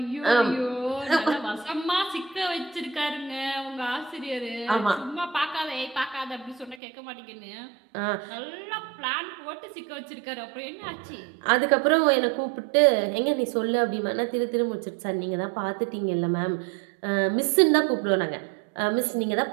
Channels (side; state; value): left; drops out; at 6.8 s